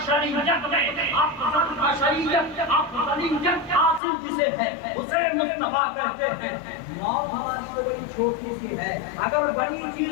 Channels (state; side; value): drops out; right; at 4.0 s